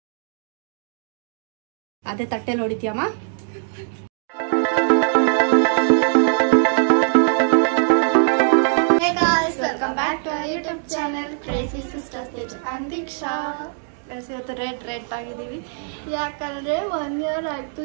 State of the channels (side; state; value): left; silent; 62 dB below the other